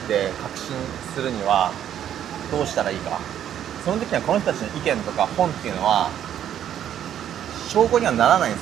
て確信するにはどうしたらいいか。その時にはこの人たちの意見とか本っていうのは証拠にはならないんで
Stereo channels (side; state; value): left; quieter; 10.3 dB